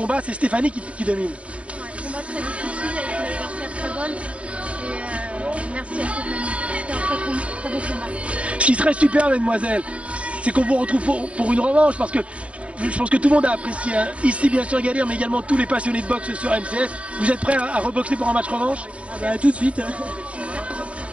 c'est Stéphanie qui domine. Ouais, combat très difficile avec une adversaire très bonne. Et merci à Stéphanie. C'était un très beau combat. Ce qui serait super, mesdemoiselles, c'est qu'on vous retrouve pour une revanche, parce que je pense que tout le monde a apprécié, hein. Ici bien sûr Gaël, mais également tous les passionnés de boxe sur MCS. Vous êtes prêts à reboxer pour un match revanche? Ah bah, tout de suite.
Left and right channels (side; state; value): left; late; 0.063 ms